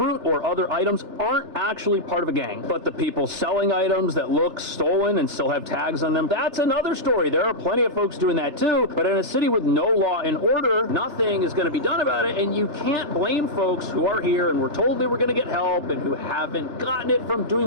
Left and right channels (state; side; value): late; left; 3.4 ms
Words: or other items aren't actually part of a gang. But the people selling items that look stolen and still have tags on them, that's another story. There are plenty of folks doing that too, but in a city with no law and order, nothing is going to be done about it, and you can't blame folks who are here and were told they were going to get help and who haven't gotten it from